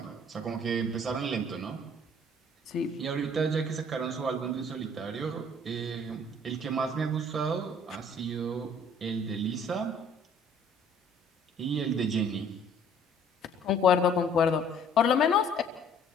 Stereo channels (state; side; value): normal; both; correlation 0.56